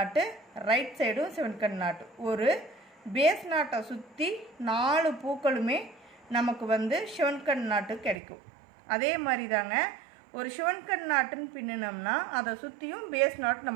ரைட் சைடும் சிவன் கண் நாட்டு. ஒரு பேஸ் நாட்டை சுற்றி 4 பூக்களுமே நமக்கு வந்து சிவன் கண் நாட்டு கிடைக்கும். அதே மாதிரி தாங்க ஒரு சிவன் கண் நாட்டுன்னு பின்னினோம்னா அதை சுற்றியும் பேஸ் நாட்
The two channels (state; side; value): drops out; left; at 8.2 s